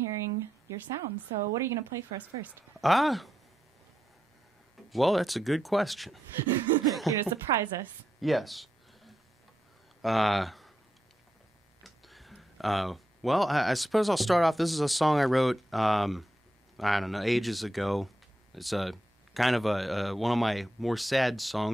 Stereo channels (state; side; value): normal; both; correlation 0.84